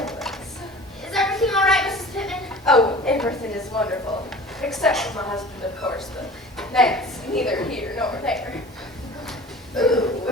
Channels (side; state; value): both; normal; correlation 0.41